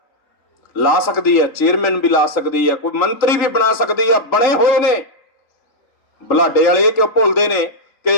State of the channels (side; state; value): right; late; 3.8 ms